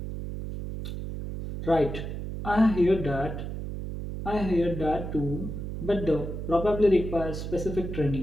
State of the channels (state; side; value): noise; right; hum, 6 dB below the sound